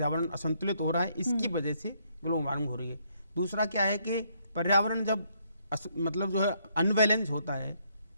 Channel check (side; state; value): both; inverted; correlation -0.72